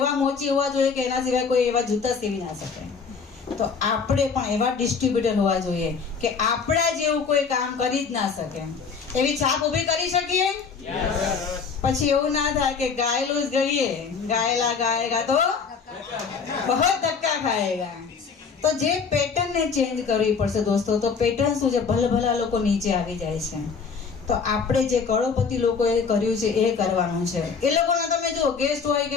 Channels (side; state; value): right; quieter; 5.6 dB